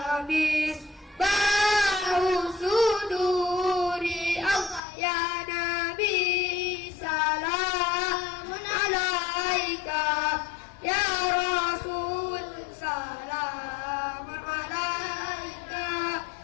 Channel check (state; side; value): drops out; right; at 4.8 s